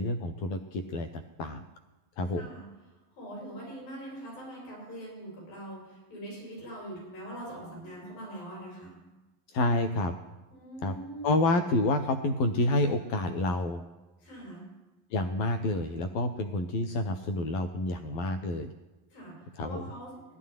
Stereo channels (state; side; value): late; right; 11 ms